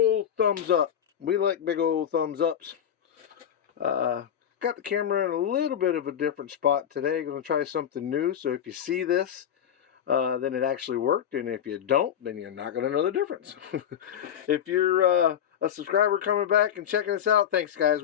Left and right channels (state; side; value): quieter; right; 9.4 dB